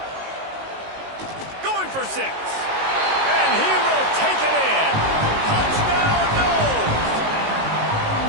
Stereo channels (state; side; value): late; left; 19 ms